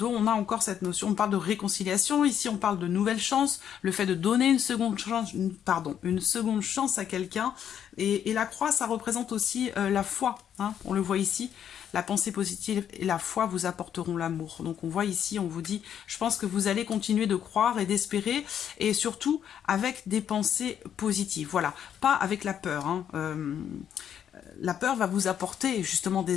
on a encore cette notion, on parle de réconciliation, ici on parle de nouvelle chance, le fait de donner une seconde chance à quelqu'un. Et la croix, ça représente aussi la foi, on le voit ici. La pensée positive et la foi vous apporteront l'amour. Donc on voit ici, on vous dit, je pense que vous allez continuer de croire et d'espérer, et surtout avec des pensées positives. Voilà, pas avec la peur. La peur va vous apporter justement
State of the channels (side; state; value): right; quieter; 9.2 dB